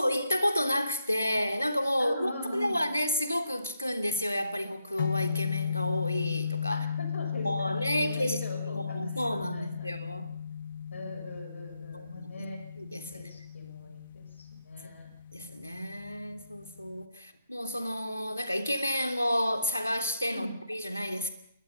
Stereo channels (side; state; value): both; inverted; correlation -0.81